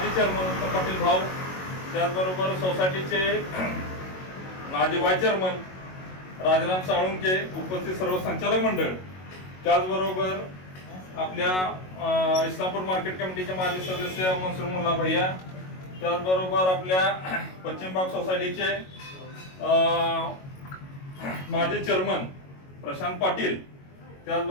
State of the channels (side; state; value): right; late; 22 ms